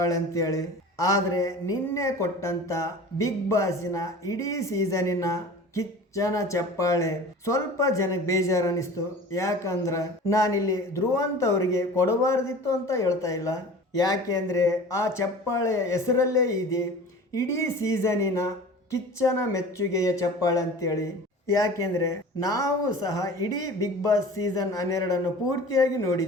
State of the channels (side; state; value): both; normal; correlation 0.39